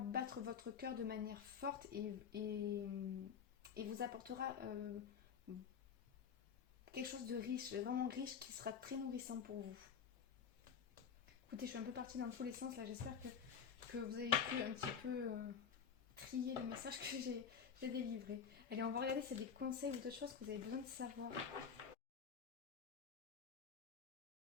votre cœur de manière forte et vous apportera quelque chose de riche, vraiment riche, qui sera très nourrissant pour vous. Écoutez, je suis un peu partie dans tous les sens là, j'espère que vous avez pu un petit peu trier le message que j'ai délivré. Allez, on va regarder s'il y a des conseils ou d'autres choses que vous avez besoin de savoir.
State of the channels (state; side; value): quieter; right; 7.0 dB